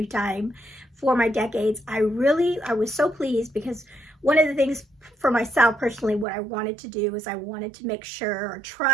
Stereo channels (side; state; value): left; drops out; at 6.2 s